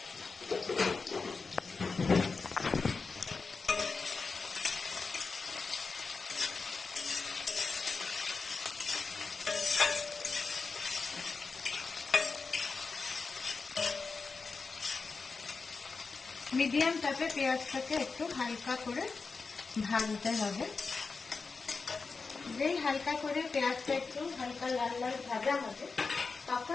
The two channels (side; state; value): right; quieter; 4.5 dB